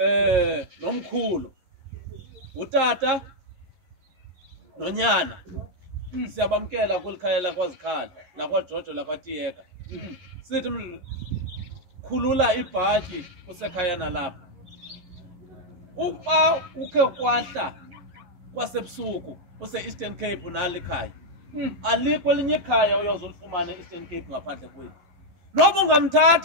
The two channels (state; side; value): late; left; 11 ms